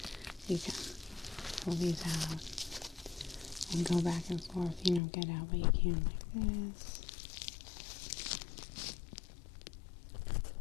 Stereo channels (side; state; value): right; drops out; at 5.0 s